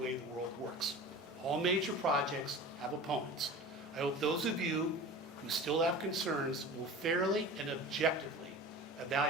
the world works. All major projects have opponents. I hope those of you who still have concerns will fairly and objectively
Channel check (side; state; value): both; normal; correlation 0.36